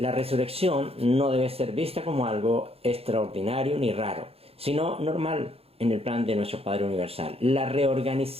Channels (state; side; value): late; left; 0.29 ms